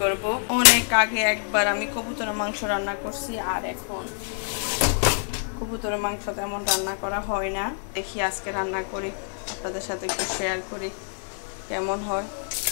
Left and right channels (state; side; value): silent; right; 61 dB below the other